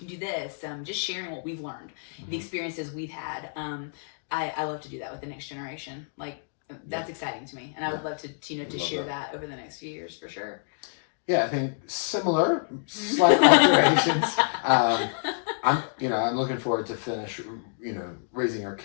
do this. Just sharing what we've learned, the experiences we've had. I love to do that with the next generation. Like that's exciting to me, and I would love to to share that over the next few years for sure. Yeah, I think similar, slight alterations. I'm looking forward to finish, raising our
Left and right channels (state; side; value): silent; right; digital silence